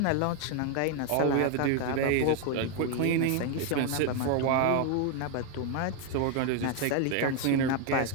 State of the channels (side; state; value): both; different; correlation 0.01